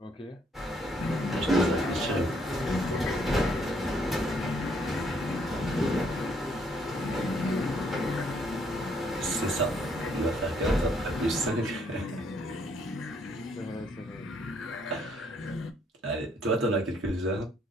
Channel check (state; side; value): normal; both; correlation 0.69